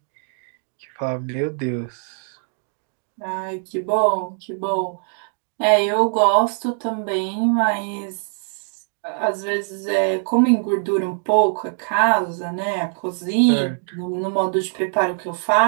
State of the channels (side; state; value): left; silent; digital silence